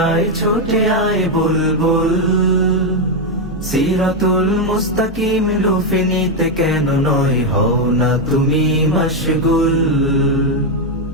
আয় ছুটে আয় বুলবুল সিরাতুল মুস্তাকিম লুফে নিতে কেন নয় হও না তুমি মশগুল।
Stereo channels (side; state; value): both; normal; correlation 0.04